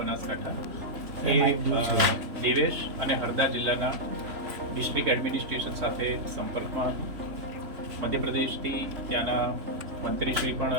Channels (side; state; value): left; late; 3.4 ms